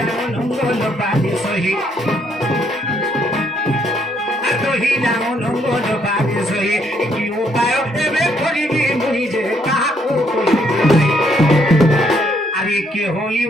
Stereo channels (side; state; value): both; normal; correlation 0.71